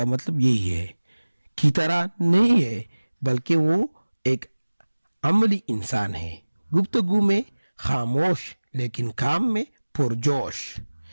مطلب یہی ہے کی طرح نہیں ہے بلکہ وہ ایک عملی انسان ہے, گفتگو میں خاموش لیکن کام میں پرجوش,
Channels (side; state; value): both; inverted; correlation -1.00